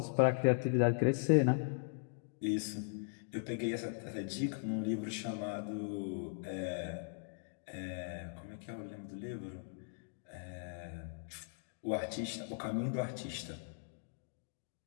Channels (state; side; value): silent; right; digital silence